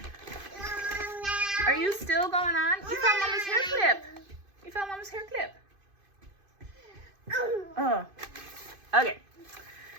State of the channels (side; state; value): left; late; 2.5 ms